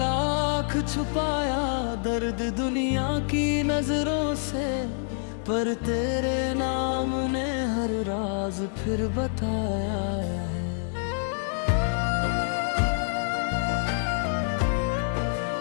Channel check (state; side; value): silent; right; digital silence